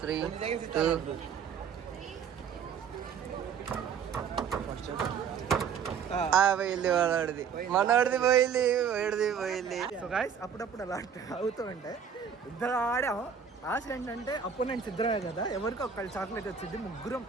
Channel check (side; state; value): left; quieter; 7.1 dB